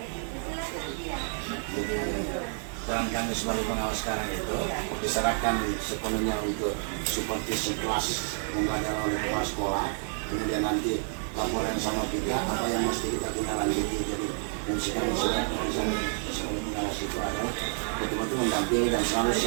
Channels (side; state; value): left; silent; 58 dB below the other